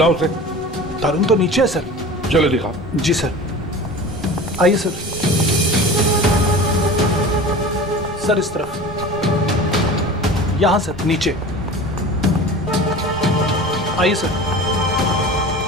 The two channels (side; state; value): both; normal; correlation 0.36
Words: उसे। तरुण तो नीचे है सर। चलो दिखाओ। जी सर, आइए सर। सर इस तरफ, यहां सर, नीचे आइए सर।